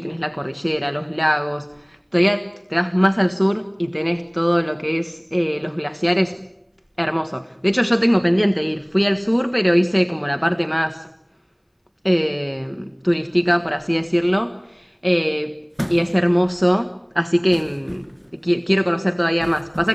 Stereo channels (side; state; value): both; identical; correlation 1.00